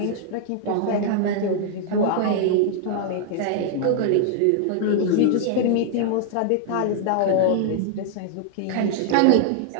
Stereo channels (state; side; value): different; both; correlation 0.00